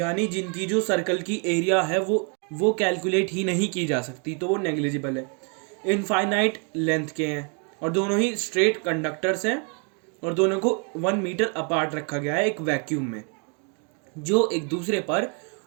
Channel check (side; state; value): left; quieter; 38.2 dB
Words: जिनकी जो सर्कल की एरिया है वो कैलकुलेट ही नहीं की जा सकती, तो वो नेग्लिजिबल है, इनफाइनाइट लेंथ के हैं और दोनों ही स्ट्रेट कंडक्टर्स हैं और दोनों को 1 मीटर अपार्ट रखा गया है एक वैक्यूम में, जो एक दूसरे पर